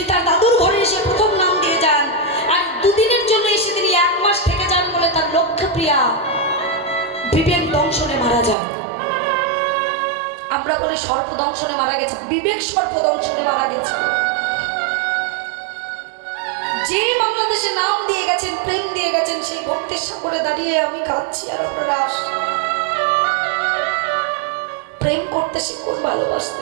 তার দাদুর ঘরে এসে প্রথম নাম দিয়ে যান, আর 2 দিনের জন্য এসে তিনি 1 মাস থেকে যান বলে তার লক্ষ্যপ্রিয়া বিবেক দংশনে মারা যান। আমরা বলি সর্পদংশনে মারা গেছে, বিবেক সর্পদংশনে মারা গেছে। যে বাংলাদেশে নাম দিয়ে গেছেন, প্রেম দিয়ে গেছেন, সেই ভক্তির সাগরে দাঁড়িয়ে আমি কাঁদছি আর আপনারা আসছেন। প্রেম করতে শিখুন, ভালোবাসতে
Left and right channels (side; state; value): left; drops out; at 8.6 s